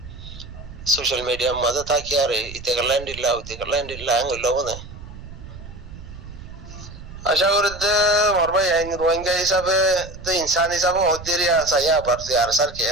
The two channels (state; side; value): noise; right; rumble, 14 dB below the sound